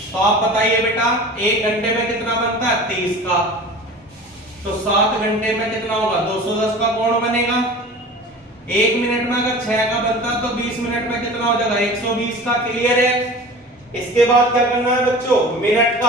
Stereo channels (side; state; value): both; normal; correlation 0.38